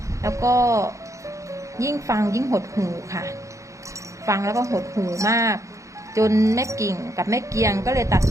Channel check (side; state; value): left; late; 0.15 ms